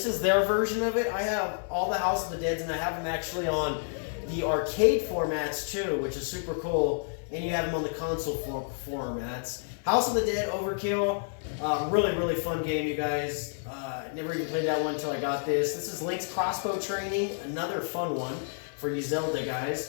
is their version of it. I have all the House of the Deads, and I have them actually on the arcade formats too, which is super cool. And you have them on the console formats. House of the Dead Overkill. Really, really fun game, you guys. Never even played that one until I got this. This is Link's Crossbow Training. Another fun one for you Zelda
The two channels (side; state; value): right; silent; 58 dB below the other